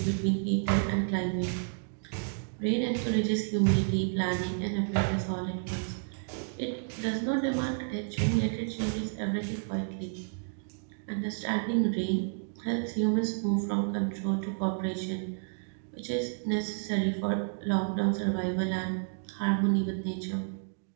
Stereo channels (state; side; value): silent; left; digital silence